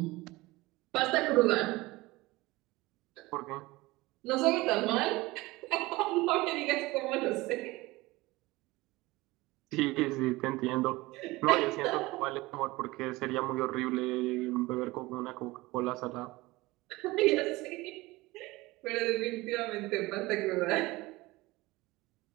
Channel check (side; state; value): left; quieter; 20.8 dB